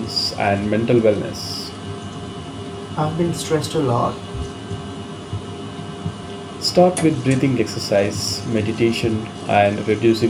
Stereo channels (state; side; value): identical; both; correlation 1.00